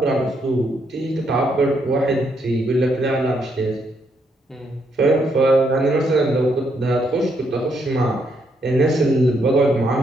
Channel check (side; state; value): both; normal; correlation 0.75